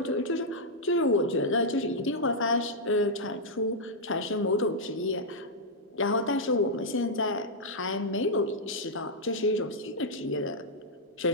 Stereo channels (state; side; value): normal; both; correlation -0.06